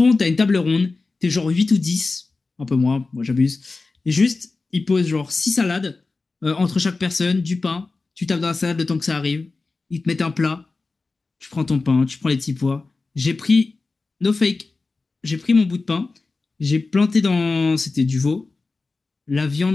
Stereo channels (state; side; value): quieter; right; 3.8 dB